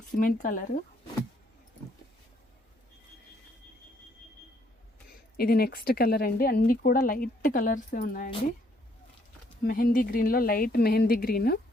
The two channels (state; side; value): normal; both; correlation 0.68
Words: Cement colour. ఇది నెక్స్ట్ కలర్ అండి. అన్నీ కూడా లైట్ కలర్సే ఉన్నాయండి. మెహందీ గ్రీన్లో light mehndi green